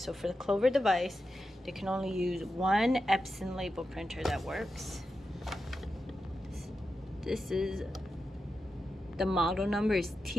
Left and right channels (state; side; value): normal; both; correlation 0.90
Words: for the Clover device, they can only use one Epson label printer that works. This is, the model number is